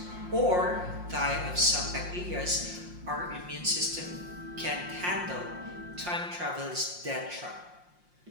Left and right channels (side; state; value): left; late; 5.6 ms